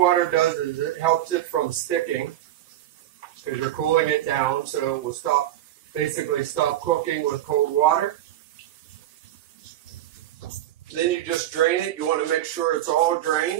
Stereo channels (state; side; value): quieter; left; 13.0 dB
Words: does is it helps it from sticking because you're cooling it down, so it will basically stop cooking with cold water. Then you just drain it. You want to make sure it's all